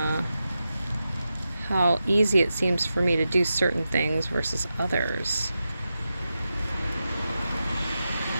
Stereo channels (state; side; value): inverted; both; correlation -0.90